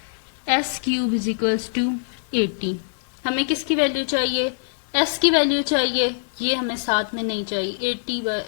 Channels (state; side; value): silent; right; digital silence